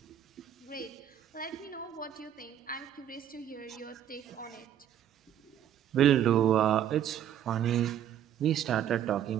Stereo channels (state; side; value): quieter; left; 10.2 dB